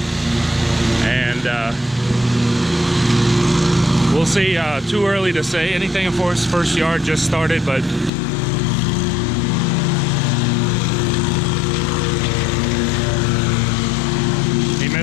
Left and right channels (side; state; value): right; drops out; at 8.1 s